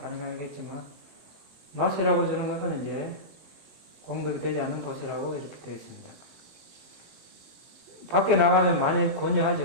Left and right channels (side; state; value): left; late; 20 ms